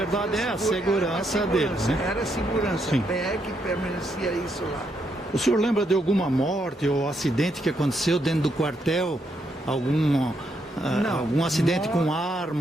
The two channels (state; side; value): normal; both; correlation 0.78